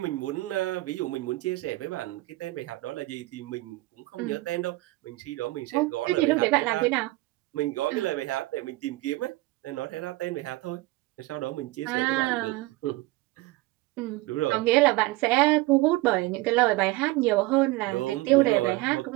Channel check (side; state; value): left; quieter; 20.0 dB